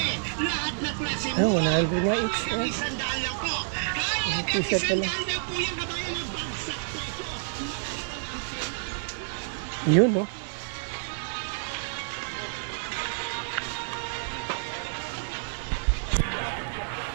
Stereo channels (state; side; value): silent; left; digital silence